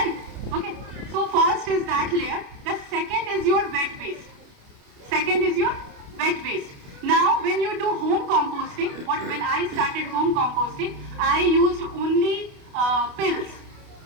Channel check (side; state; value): left; late; 29 ms